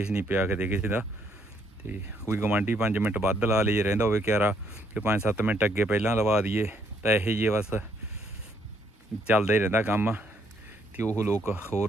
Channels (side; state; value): both; normal; correlation 0.70